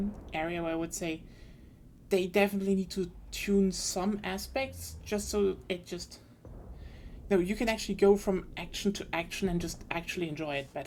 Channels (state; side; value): identical; both; correlation 1.00